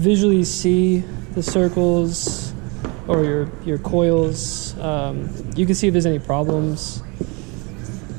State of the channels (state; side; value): quieter; left; 29.4 dB